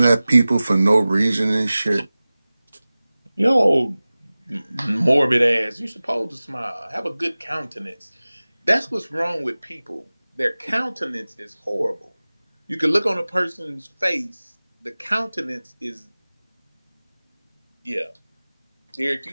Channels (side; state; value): both; inverted; correlation -0.98